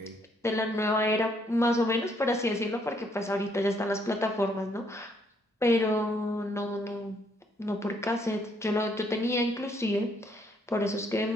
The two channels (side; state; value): both; normal; correlation 0.70